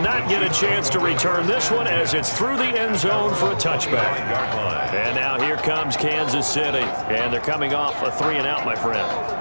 get a chance to return this one as it's through the end zone for a touchback. And now here comes Kansas City. And they're coming off a 3-and-out, my friend.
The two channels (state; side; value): inverted; both; correlation -1.00